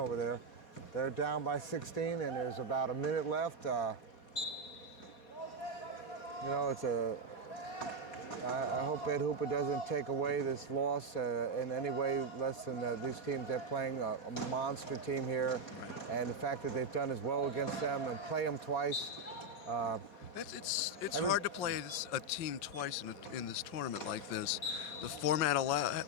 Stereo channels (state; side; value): late; right; 4.2 ms